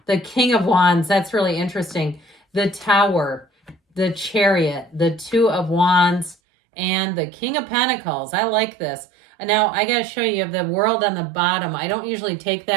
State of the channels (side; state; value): left; drops out; at 6.4 s